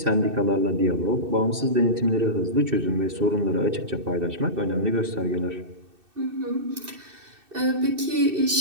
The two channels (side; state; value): left; late; 2.6 ms